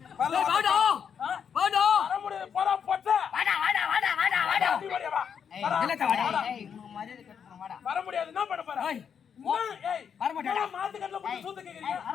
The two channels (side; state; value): right; quieter; 7.4 dB